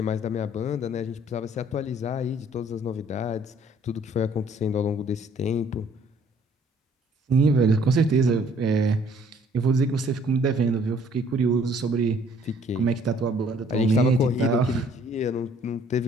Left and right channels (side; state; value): both; normal; correlation 0.60